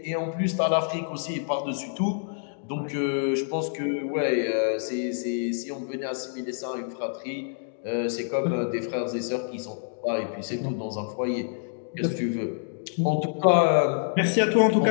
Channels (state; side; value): silent; right; digital silence